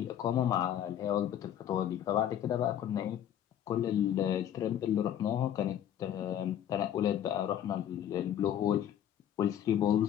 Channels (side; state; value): right; quieter; 10.4 dB